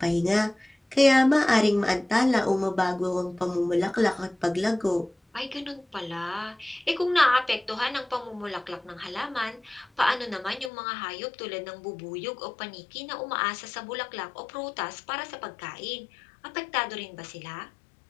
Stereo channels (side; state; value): right; drops out; at 10.7 s